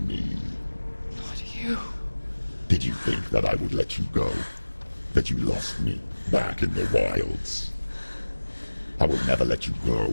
me. Not you. Did you think that I would let you go? That you lost me back in the wilds? I will never let you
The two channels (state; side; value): inverted; both; correlation -1.00